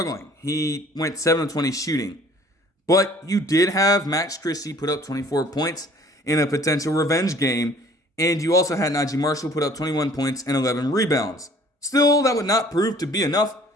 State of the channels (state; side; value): normal; both; correlation 0.54